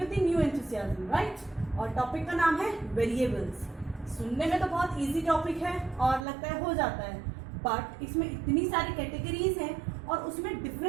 new enthusiasm, right. और टॉपिक का नाम है वेरिएबल्स। सुनने में तो बहुत इजी टॉपिक है और लगता है हो जाता है, बट इसमें इतनी सारी कैटेगरीज हैं और उसमें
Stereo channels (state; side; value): drops out; left; at 6.2 s